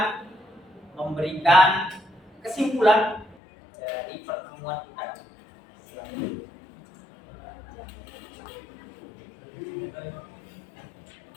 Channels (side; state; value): right; drops out; at 3.4 s